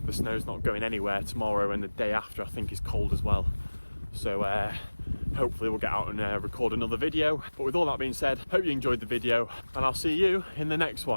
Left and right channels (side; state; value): both; inverted; correlation -1.00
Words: the snow's not going anywhere tomorrow, and the day after I think is cold as well. So hopefully we'll get out and record another video. But with all that being said, hope you enjoyed the video, and I'll see you in the next